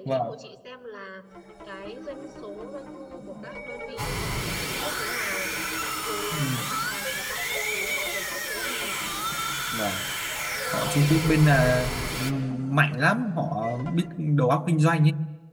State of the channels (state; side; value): identical; both; correlation 1.00